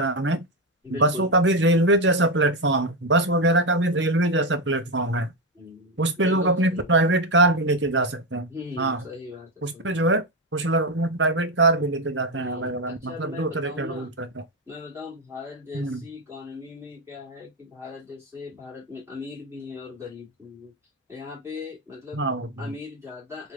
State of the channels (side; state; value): both; normal; correlation 0.09